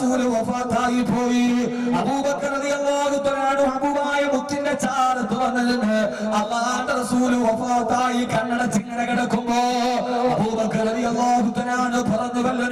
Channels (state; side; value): identical; both; correlation 1.00